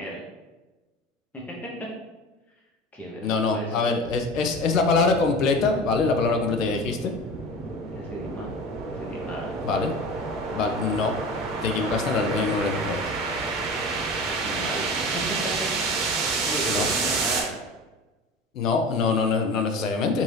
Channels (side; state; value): both; normal; correlation 0.34